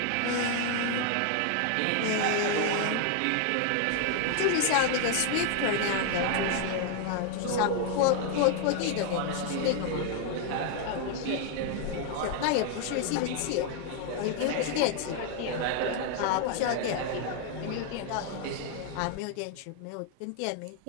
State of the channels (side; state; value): both; different; correlation 0.00